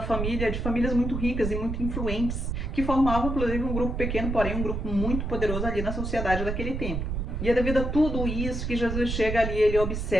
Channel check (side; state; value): right; noise; rumble, 3 dB below the sound